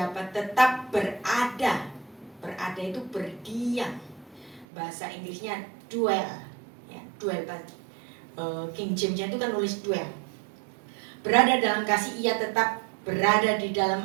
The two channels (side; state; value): left; drops out; at 4.7 s